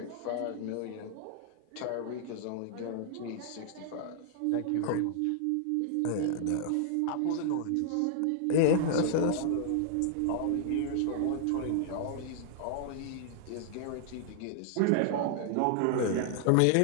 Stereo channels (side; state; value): both; different; correlation -0.01